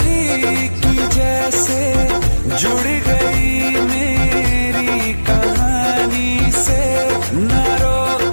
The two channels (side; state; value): both; inverted; correlation -1.00